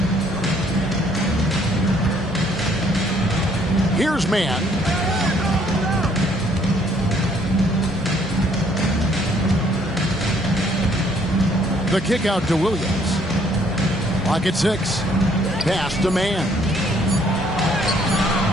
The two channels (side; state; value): both; normal; correlation 0.64